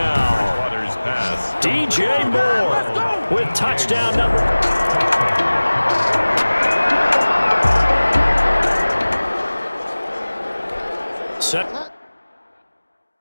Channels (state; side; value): inverted; both; correlation -1.00